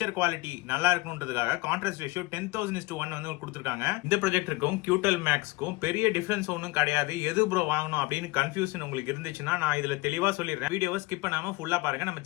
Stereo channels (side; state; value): right; quieter; 22.0 dB